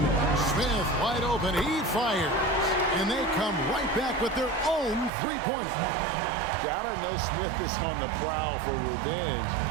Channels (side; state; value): left; drops out; at 5.1 s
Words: Smith wide open. He fires. And they come right back with their own 3-pointer. Gotta know Smith is on the prowl for revenge